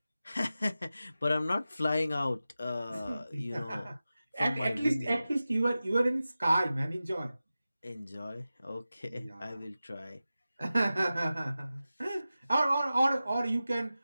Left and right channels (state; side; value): inverted; both; correlation -0.94